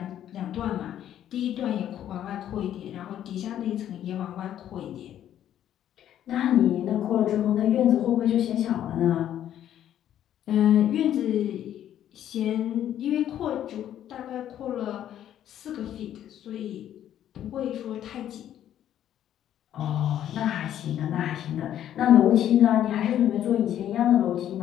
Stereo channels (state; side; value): quieter; right; 11.0 dB